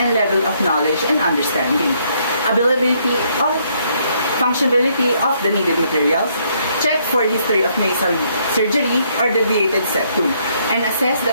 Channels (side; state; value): both; inverted; correlation -0.70